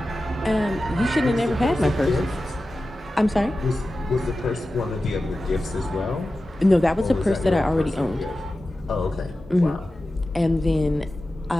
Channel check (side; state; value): both; normal; correlation 0.94